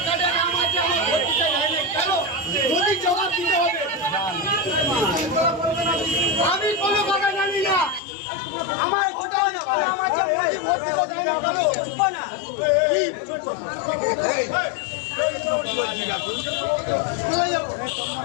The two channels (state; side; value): drops out; right; at 8.0 s